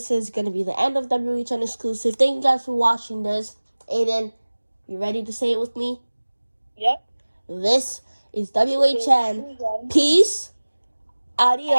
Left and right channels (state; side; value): inverted; both; correlation -1.00